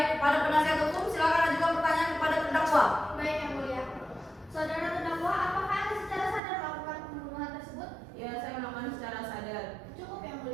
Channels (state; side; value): drops out; left; at 6.4 s